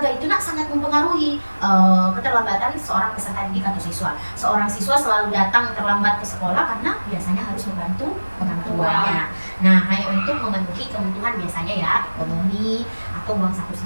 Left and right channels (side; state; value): both; inverted; correlation -1.00